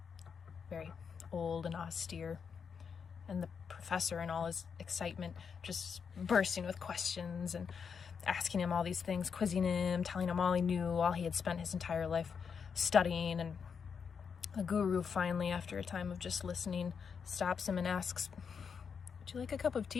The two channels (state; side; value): quieter; right; 6.4 dB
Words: very old and austere. And the professor, in all his excitement, just bursting with questions and asking him all these things, quizzing him, telling him all he knew, all he had spent his entire life studying. And the guru finally, after a time of just listening, stops him and asks, "Would you like a cup of